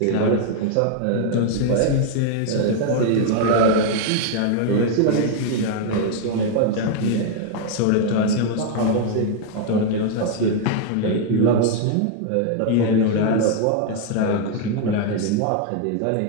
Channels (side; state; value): both; different; correlation 0.00